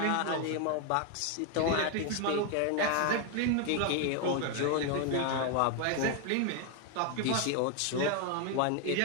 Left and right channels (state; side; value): different; both; correlation 0.01